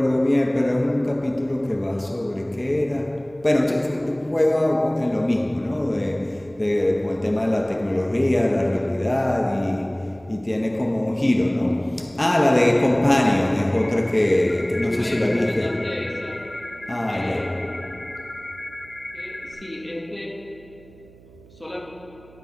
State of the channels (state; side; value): noise; right; hum, 24 dB below the sound